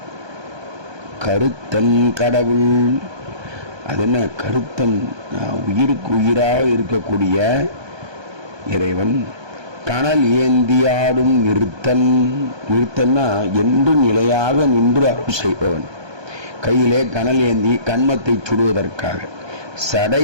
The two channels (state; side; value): late; left; 1.2 ms